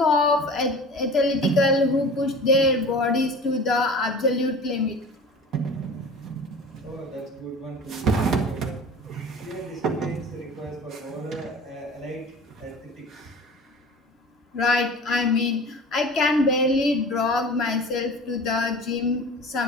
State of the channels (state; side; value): normal; both; correlation 0.39